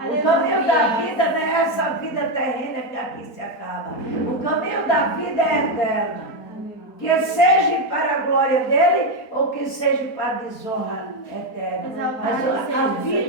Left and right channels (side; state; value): right; late; 4.2 ms